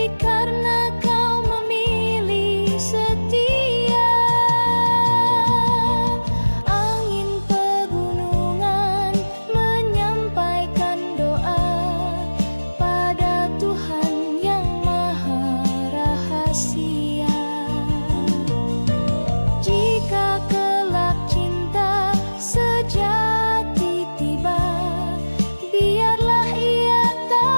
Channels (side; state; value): both; inverted; correlation -1.00